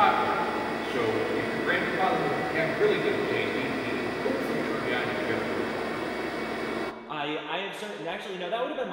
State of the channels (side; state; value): both; identical; correlation 1.00